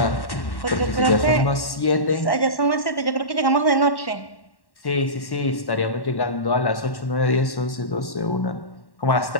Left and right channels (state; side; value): late; right; 1.1 ms